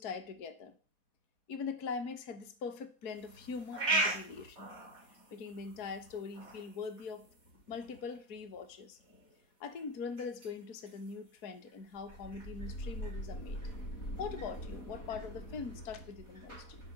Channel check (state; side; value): late; right; 4.1 ms